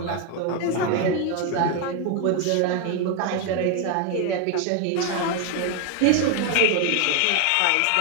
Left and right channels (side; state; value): both; different; correlation 0.01